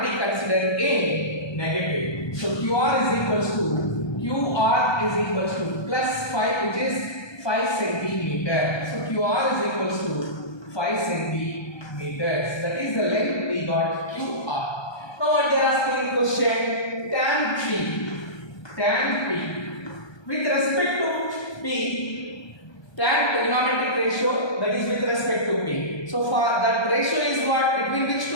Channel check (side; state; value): right; late; 1.2 ms